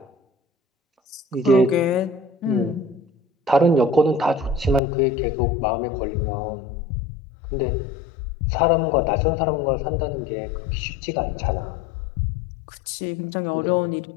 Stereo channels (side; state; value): right; drops out; at 4.8 s